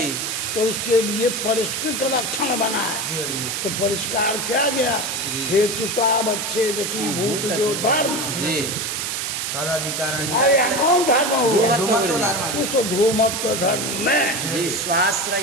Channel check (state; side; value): noise; right; hiss, 2 dB below the sound